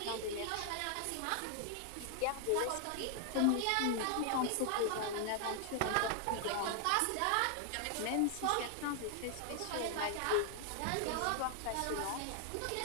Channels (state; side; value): different; both; correlation 0.00